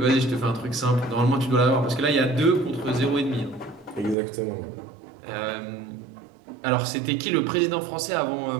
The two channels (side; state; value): left; drops out; at 4.2 s